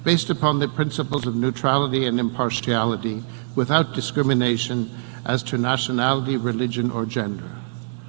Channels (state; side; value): silent; left; digital silence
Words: based upon the principles of neutrality and impartiality, without discrimination as to nationality, religion, or gender.